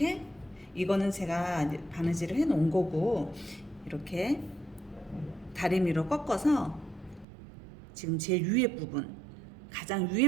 이거는 제가 바느질을 해 놓은 거고, 이렇게 다리미로 꺾어서 지금 제일 위에 부분, 가장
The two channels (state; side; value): drops out; left; at 7.2 s